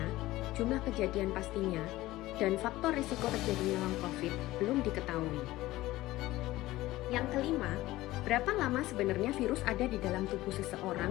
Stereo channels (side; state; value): right; quieter; 17.3 dB